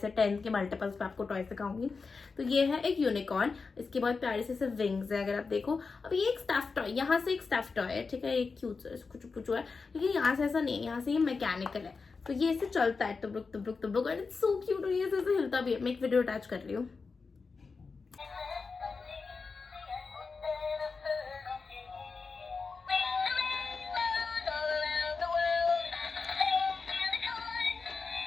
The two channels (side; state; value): right; quieter; 4.6 dB